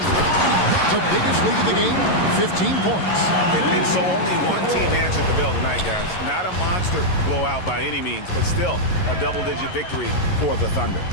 The biggest lead of the game, 15 points. And so only one team answered the bell tonight, guys. Not a monster blowout by any means, but still a double-digit victory for the Thunder.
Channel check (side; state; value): right; late; 11 ms